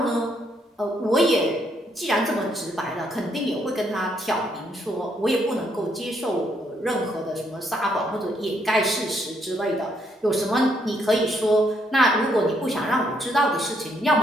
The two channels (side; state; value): both; normal; correlation 0.73